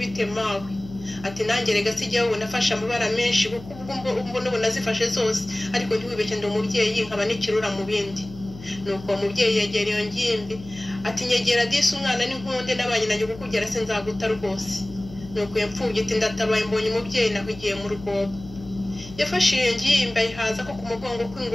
bite mawe? Ati nanjye rega sijya wowe nafashe amabara menshi kuko ubwo n'ubu nazifashe zose, ariko ntiwibeshye ndi umubyeyi nkaba n'ikirura mu bindi. Nuko uwo mubyeyi yegera iyo ngimbi ati nyegera disi umwana n'inkunde n'abanye nanjye kukugera sinzaguta rwose. Nuko iyo mfubyi iti ndatabaye mbonye umubyeyi nahugiye mu rwobo. Yafashe iyo ngimbi ayihaza ko ku mugongo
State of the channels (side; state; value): left; noise; hum, 16 dB below the sound